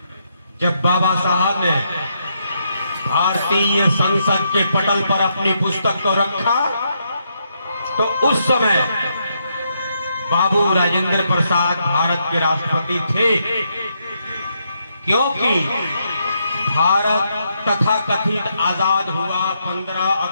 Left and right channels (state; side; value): inverted; both; correlation -0.78